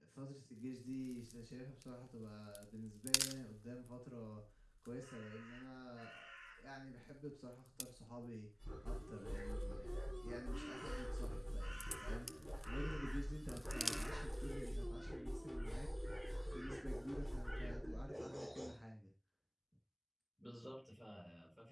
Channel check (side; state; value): both; identical; correlation 1.00